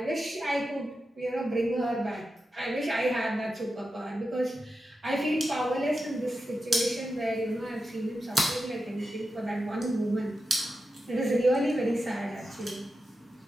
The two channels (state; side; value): normal; both; correlation 0.90